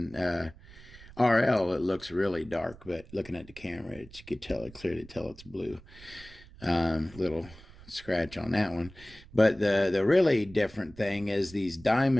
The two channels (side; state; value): right; noise; rumble, 20 dB below the sound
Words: RL, it looks really dark, but looking at the camera, you could clearly tell it's blue. Little scratch on that one. But the really different thing is these